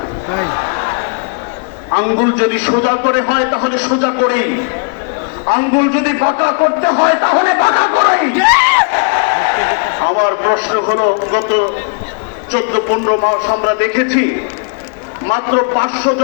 তাই। আঙ্গুল যদি সোজা করে হয় তাহলে সোজা করেই, আঙ্গুল যদি বাঁকা করতে হয় তাহলে বাঁকা করেই। আমার প্রশ্ন হলো, গত 14-15 মাস আমরা দেখেছি মাত্র 500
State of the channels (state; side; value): quieter; right; 39.4 dB